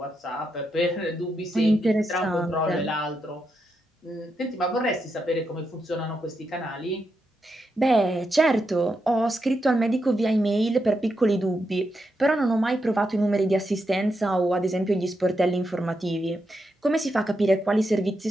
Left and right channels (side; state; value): both; normal; correlation 0.84